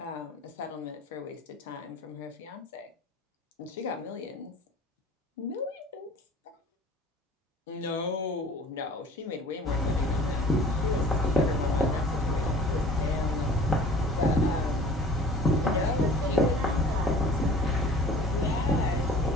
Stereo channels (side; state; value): both; normal; correlation 0.46